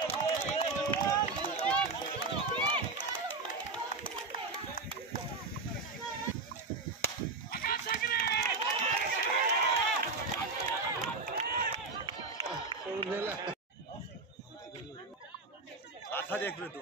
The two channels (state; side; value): quieter; left; 3.8 dB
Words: आथा देख रहे तू,